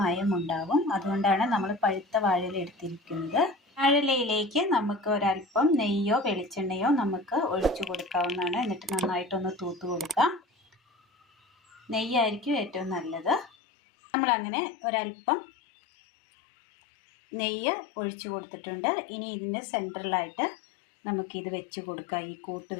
മയം ഉണ്ടാവും. അതുകൊണ്ടാണ് നമ്മൾ പഴുത്ത വാഴയില എടുത്തിരിക്കുന്നത്. വാഴയിലയിലേക്ക് നമുക്ക് ഒരൽപ്പം നെയ്യോ വെളിച്ചെണ്ണയോ നമുക്ക് ഒഴിച്ചു കൊടുക്കാവുന്നതാണ്. എന്നിട്ട് നന്നായിട്ടൊന്ന് തൂത്ത് കൊടുക്കാം. നെയ്യായിരിക്കും ഏറ്റവും നല്ലത്. നമ്മളങ്ങനെ ഒരൽപ്പം നെയ്യ് ഒഴിച്ചു കൊടുത്തിട്ടുണ്ട്. ഇനി ഇതിൻ്റെ സെൻറ്ററിലായിട്ട് നമുക്കിത് വെച്ച് കൊടുക്കാം. ഈ കൂട്ട്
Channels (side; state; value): right; drops out; at 13.5 s